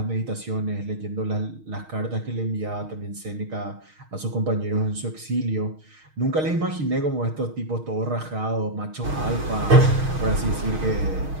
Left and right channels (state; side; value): late; left; 6.4 ms